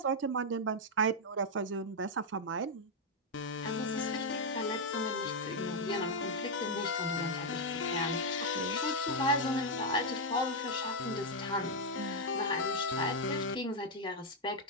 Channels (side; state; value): both; normal; correlation -0.01